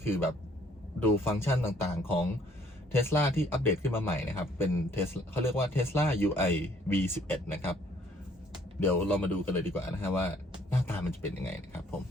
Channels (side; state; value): both; normal; correlation 0.62